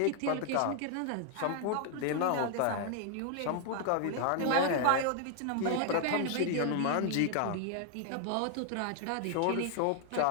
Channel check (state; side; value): different; both; correlation 0.00